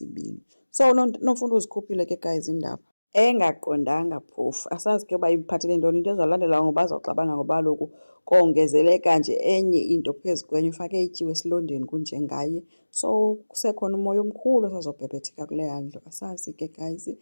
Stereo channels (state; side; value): inverted; both; correlation -1.00